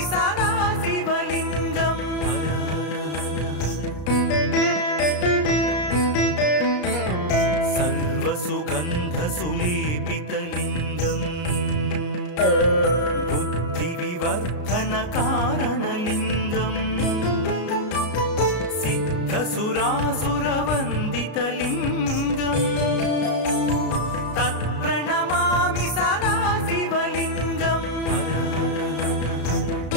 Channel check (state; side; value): late; right; 33 ms